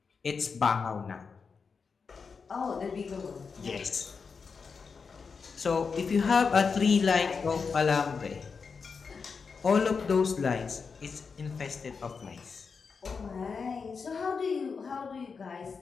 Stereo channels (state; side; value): quieter; right; 5.3 dB